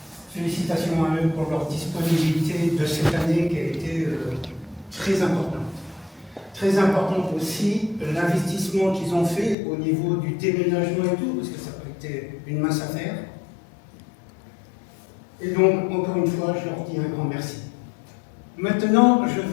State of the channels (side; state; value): right; drops out; at 9.6 s